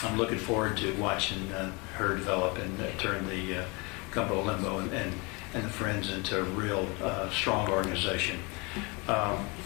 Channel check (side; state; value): right; quieter; 28.5 dB